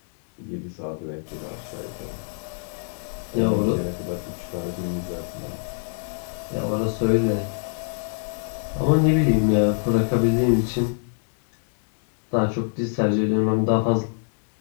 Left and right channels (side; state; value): right; silent; digital silence